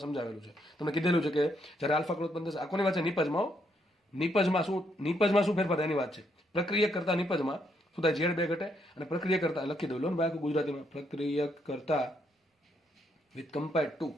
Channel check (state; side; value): normal; both; correlation 0.75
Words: સમજાવેલું છે. તમને કીધેલું છે કે જ્યારે આલ્ફા કણ ઉત્પન્ન થશે, આ કોની વાત છે? નિપજમાં શું ફેરફાર એની વાત છે. પ્રક્રિયક કરતા નિપજમાં શું થાય? ઝેડ 2 ઘટે અને પ્રક્રિયા કરતા, લખી દઉં લો ને ભાઈ ગુજરાતીમાં, પ્રક્રિયક કરતા વિથ કમ્પેર્ડ ટુ,